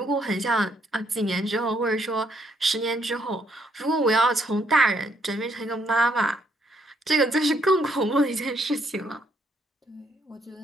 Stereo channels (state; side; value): normal; both; correlation 0.71